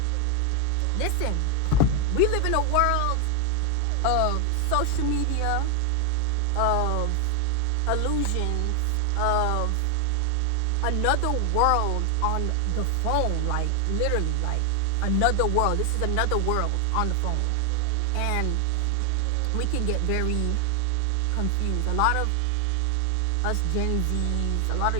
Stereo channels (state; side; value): different; both; correlation 0.00